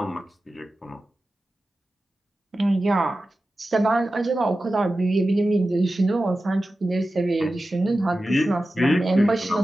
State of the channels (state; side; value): normal; both; correlation 0.94